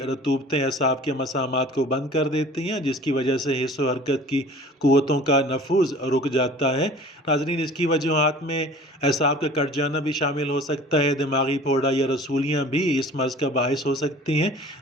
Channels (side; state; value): both; normal; correlation 0.46